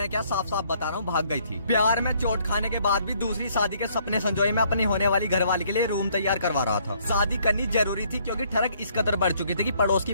क्या, साफ साफ बता रहा हूँ, भाग गई थी। प्यार में चोट खाने के बाद भी दूसरी शादी के सपने संजोए मैं अपनी होने वाली घरवाली के लिए रूम तैयार करवा रहा था। शादी करनी जरूरी थी क्योंकि ठरक इस कदर बढ़ चुकी थी कि पड़ोस की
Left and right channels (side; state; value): both; inverted; correlation -0.65